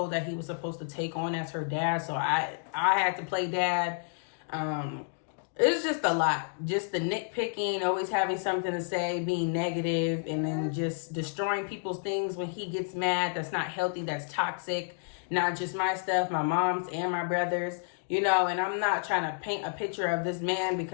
that he was supposed to take on as her dad. So I had to play dad. It was just a lot. Just the nitpicking, always having something to say, being negative, and then just destroying people's things when he gets mad. That's not healthy. That's toxic. Not just my stuff, my mom's and my brother's. And I'm not trying to paint a picture of this man,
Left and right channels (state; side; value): silent; right; digital silence